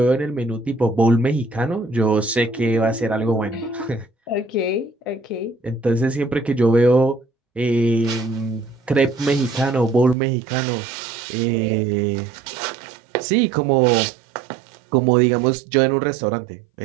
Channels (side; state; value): left; drops out; at 10.2 s